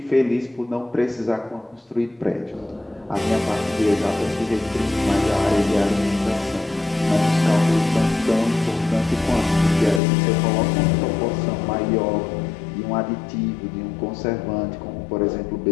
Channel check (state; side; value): drops out; right; at 10.0 s